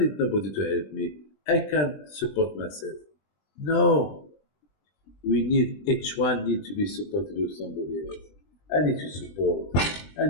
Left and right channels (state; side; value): late; right; 20 ms